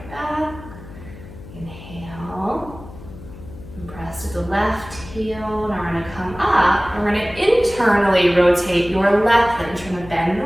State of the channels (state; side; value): noise; left; hum, 16 dB below the sound